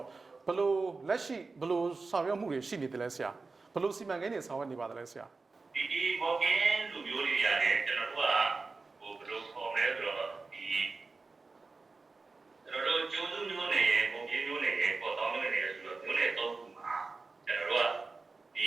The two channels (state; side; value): quieter; left; 4.0 dB